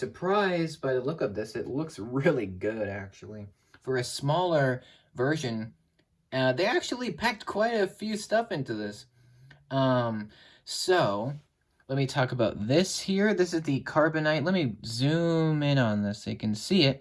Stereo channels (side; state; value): both; identical; correlation 1.00